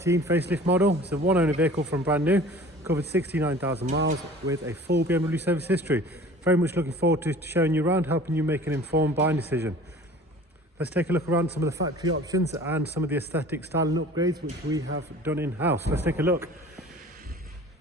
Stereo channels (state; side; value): normal; both; correlation 0.45